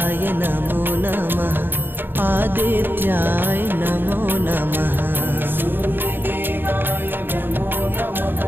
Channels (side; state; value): left; late; 0.098 ms